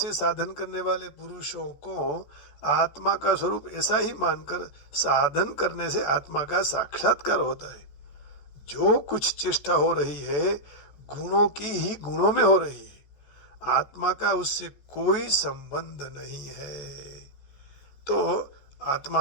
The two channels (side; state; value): right; late; 14 ms